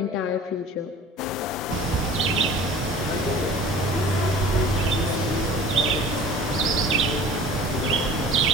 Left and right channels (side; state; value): both; normal; correlation 0.44